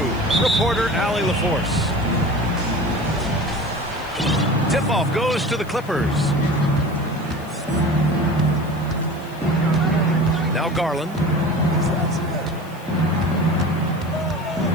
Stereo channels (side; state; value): left; noise; hiss, 24 dB below the sound